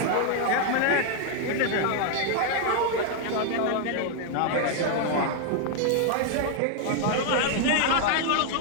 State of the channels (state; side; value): different; both; correlation 0.00